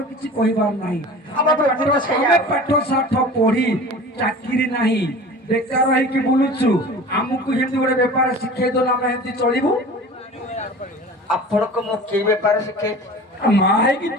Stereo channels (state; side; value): normal; both; correlation 0.39